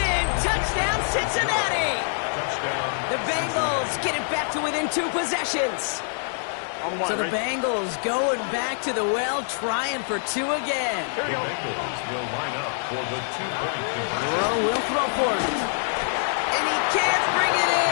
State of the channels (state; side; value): silent; right; digital silence